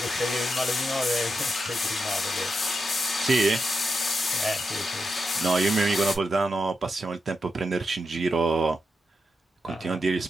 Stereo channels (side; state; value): both; normal; correlation 0.86